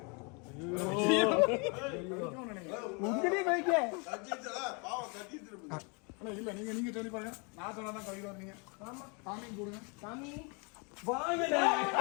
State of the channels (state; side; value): quieter; right; 33.3 dB